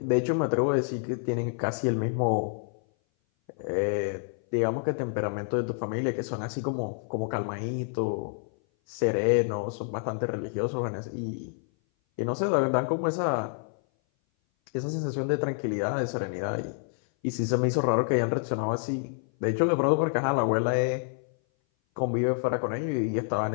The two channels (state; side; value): silent; right; 57 dB below the other